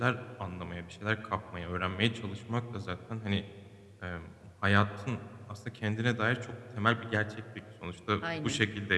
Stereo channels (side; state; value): both; identical; correlation 1.00